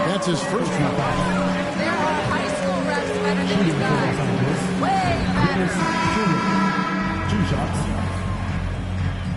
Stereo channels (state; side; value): identical; both; correlation 1.00